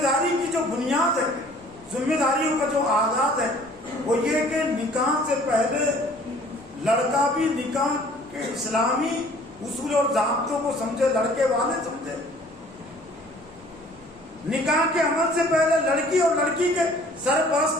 داری کی جو بنیاد ہے، ذمہ داریوں کا جو آغاز ہے، وہ یہ کہ نکاح سے پہلے لڑکا بھی نکاح کے اسلامی اصول اور ضابطوں کو سمجھے، لڑکے والے سمجھے۔ نکاح کے عمل سے پہلے لڑکی اور لڑکی کے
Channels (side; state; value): right; noise; rumble, 27 dB below the sound